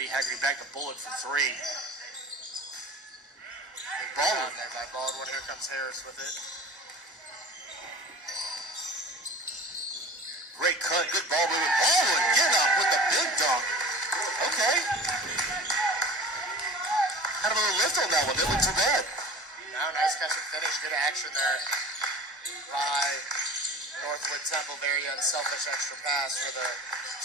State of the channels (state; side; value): normal; both; correlation 0.39